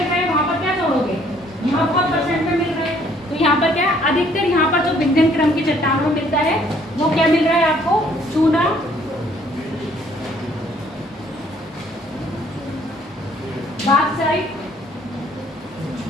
रहा है वहाँ पर क्या जोड़ोगे? यहाँ बहुत % में मिल रहा है, तो यहाँ पर क्या अधिकतर यहाँ पर जो विंध्यन क्रम की चट्टानों में मिलता है वो क्या मिल रहा है आपको? चूना, बॉक्साइट,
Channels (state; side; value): normal; both; correlation 0.62